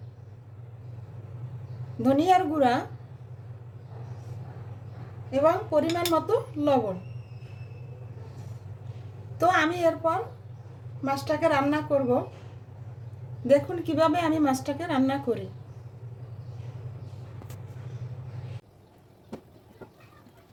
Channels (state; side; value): identical; both; correlation 1.00